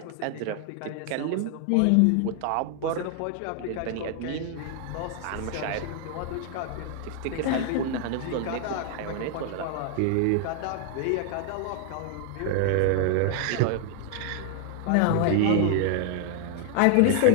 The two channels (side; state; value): both; different; correlation 0.00